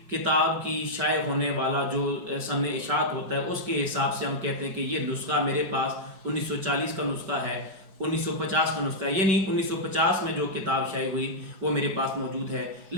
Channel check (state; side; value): late; left; 5.3 ms